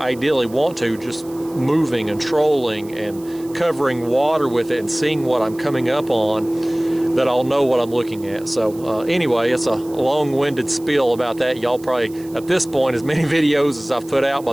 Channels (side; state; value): right; noise; hiss, 22 dB below the sound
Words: ideally want to, just moving and trolling and covering water with it and seeing what I'm coming up on, that I'll know what I'm looking at. So anyway, it's a long-winded spiel about that. Y'all probably, at this point, as many videos as I've put out by